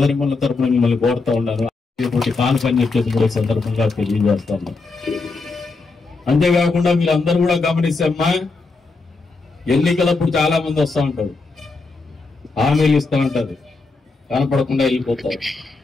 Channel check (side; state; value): right; quieter; 3.8 dB